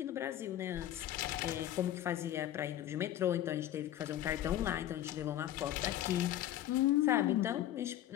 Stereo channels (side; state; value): right; quieter; 12.5 dB